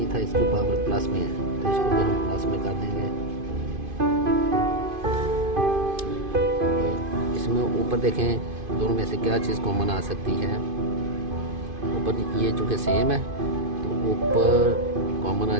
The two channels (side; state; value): left; late; 2.5 ms